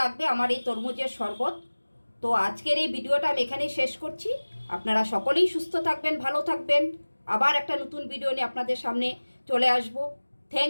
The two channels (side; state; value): both; inverted; correlation -1.00